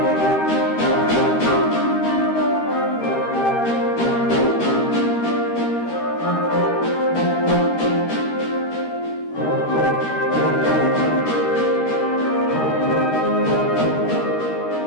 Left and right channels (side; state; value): right; late; 13 ms